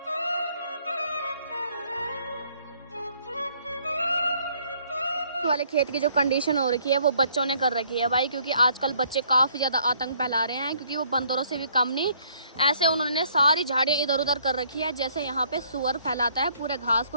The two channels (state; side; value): inverted; both; correlation -0.64